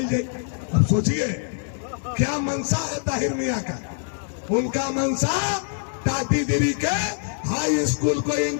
जाए। अब सोचिए क्या मनसा है ताहिर मियां का। उनका मनसा टाटीगिरी के हाई स्कूल को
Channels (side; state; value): right; silent; 62 dB below the other